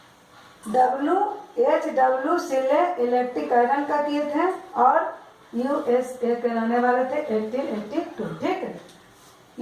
H.W. सीले इलेक्ट्रिक आयरन का किए थे और USA के रहने वाले थे 1882, ठीक है।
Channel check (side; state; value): both; identical; correlation 1.00